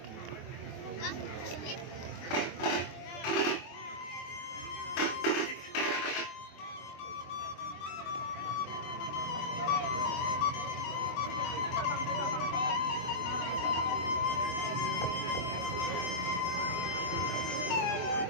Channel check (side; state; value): right; late; 23 ms